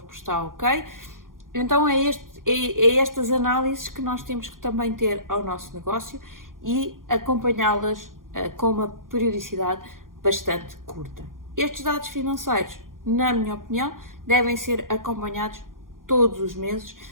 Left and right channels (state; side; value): late; left; 0.90 ms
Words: está ok. Então é estas análises que nós temos que também ter ao nosso negócio e acompanhá-las com uma periodicidade bastante curta. Estes dados financeiros, na minha opinião, devem ser acompanhados todos os meses,